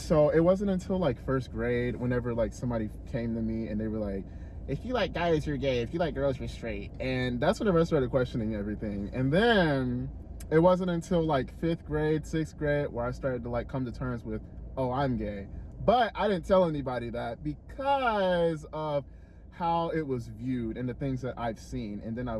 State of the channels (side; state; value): both; identical; correlation 1.00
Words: it wasn't until like first grade, whenever like somebody came to me and they were like, if you like guys, you're gay. If you like girls, you're straight. And that's whenever I started questioning everything. And then it wasn't until like 5th grade, 6th grade, where I started to like come to terms with, oh, I'm gay. But I didn't tell anybody that because of how it was viewed and the things that I've seen. And then I